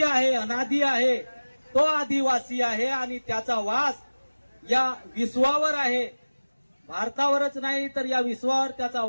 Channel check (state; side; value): inverted; both; correlation -1.00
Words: आहे, अनादि आहे, तो आदिवासी आहे आणि त्याचा वास या विश्वावर आहे। भारतावरच नाही तर या विश्वावर त्याचा